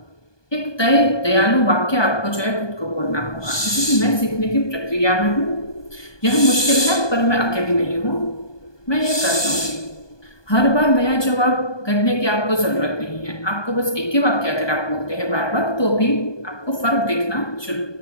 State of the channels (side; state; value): right; late; 1.2 ms